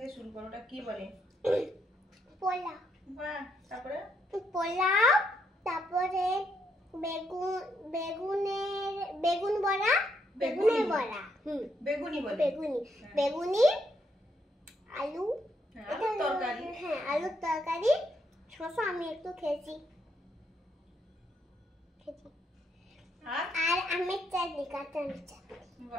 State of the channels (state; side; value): normal; both; correlation 0.76